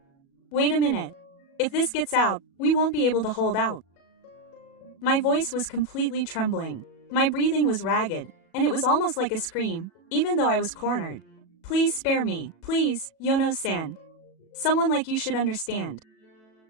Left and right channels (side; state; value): right; late; 37 ms